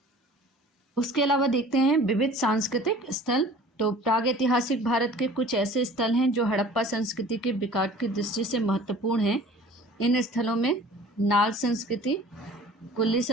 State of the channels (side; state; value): both; normal; correlation 0.46